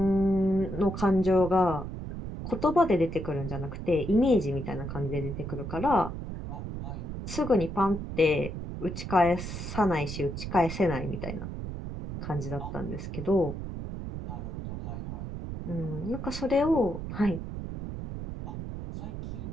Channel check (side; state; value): right; noise; rumble, 7 dB below the sound